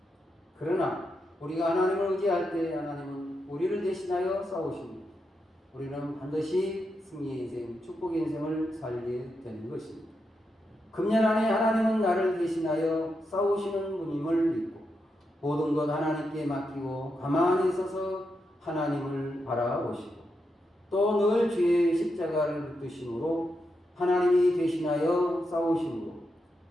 그러나 우리가 하나님을 의지할 때 하나님은 우리를 대신하여 싸우십니다. 우리는 반드시 승리의 인생, 축복의 인생을 살게 되는 것입니다. 금년 안에 하나님은 나를 대신하여 싸우시는 분임을 믿고 모든 것 하나님께 맡기고 가만히 서서 하나님을 바라보시고 또 늘 주의 십자가를 붙드심으로 하나님이 대신하여 싸우심으로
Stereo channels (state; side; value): normal; both; correlation 0.85